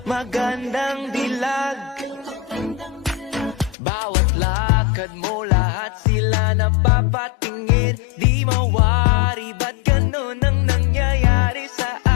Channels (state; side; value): drops out; right; at 3.8 s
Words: magandang dilag. Bawat lakad mo, lahat sila napapatingin. Di mawari, ba't ganun ang nangyayari sa